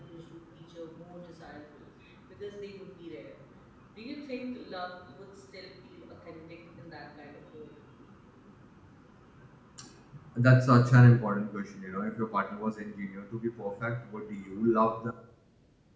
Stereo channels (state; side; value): identical; both; correlation 1.00